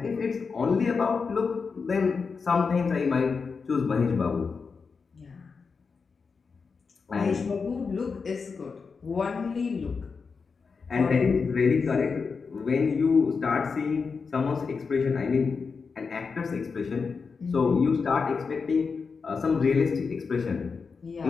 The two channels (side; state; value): right; quieter; 5.1 dB